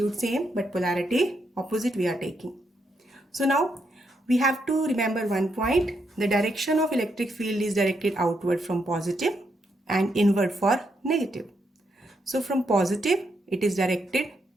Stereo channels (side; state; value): both; normal; correlation 0.79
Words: same but polarity opposite we are taking. So now we have to remember one point, the direction of electric field is directed outward from positive and inward for negative. So from positive it is directed